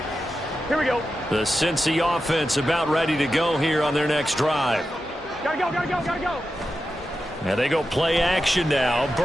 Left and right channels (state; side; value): normal; both; correlation 0.90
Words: Here we go. The Cincy offense about ready to go here on their next drive. Gotta go, gotta go, gotta go. And they go play action now.